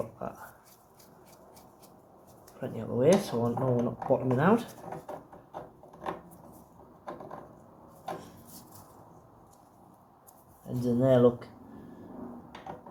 that plenty out of the way so I know we're not bottoming out. Ends in there look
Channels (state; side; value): identical; both; correlation 1.00